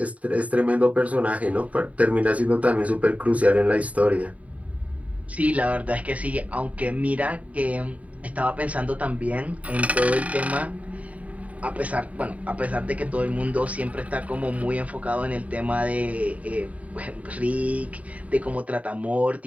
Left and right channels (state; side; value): late; left; 0.068 ms